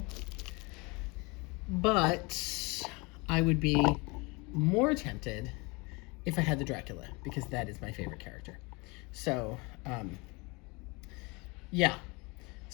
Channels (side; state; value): right; quieter; 27.3 dB